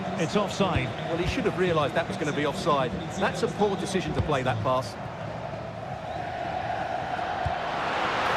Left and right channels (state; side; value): identical; both; correlation 1.00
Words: It's offside. Well, he should have realised that was going to be offside. That's a poor decision to play that pass.